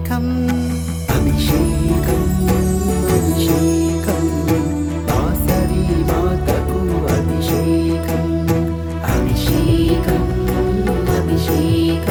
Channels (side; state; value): both; identical; correlation 1.00